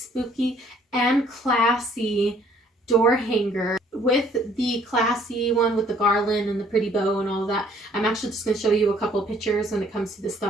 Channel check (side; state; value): both; normal; correlation 0.61